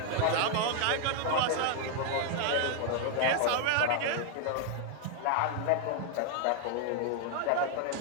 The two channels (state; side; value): different; both; correlation 0.00